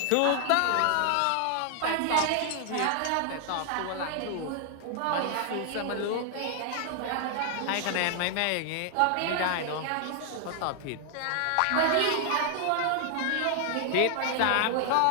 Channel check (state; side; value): different; both; correlation 0.00